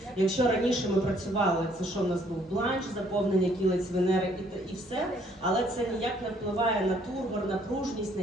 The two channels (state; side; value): normal; both; correlation 0.64